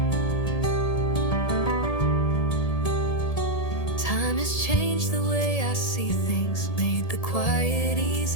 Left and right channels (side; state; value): right; late; 1.8 ms